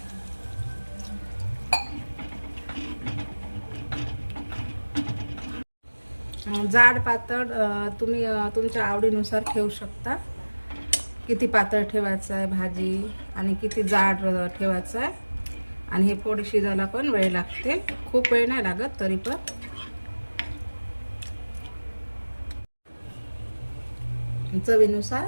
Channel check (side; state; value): both; inverted; correlation -1.00